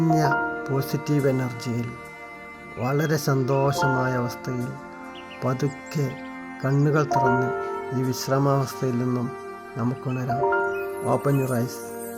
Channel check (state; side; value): identical; both; correlation 1.00